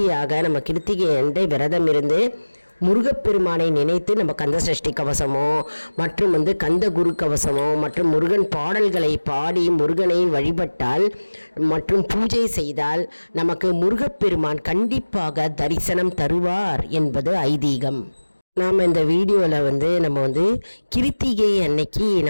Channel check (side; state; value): both; inverted; correlation -1.00